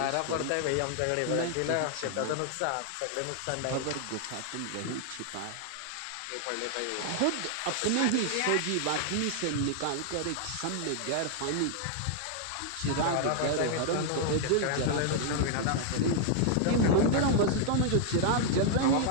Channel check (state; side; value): different; both; correlation 0.00